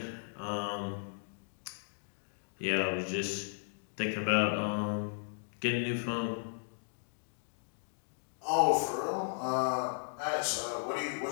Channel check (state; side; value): silent; right; digital silence